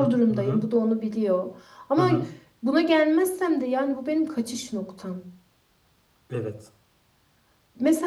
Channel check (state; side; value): identical; both; correlation 1.00